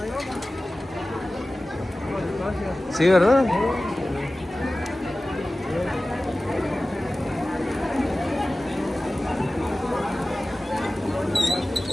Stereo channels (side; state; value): both; normal; correlation 0.97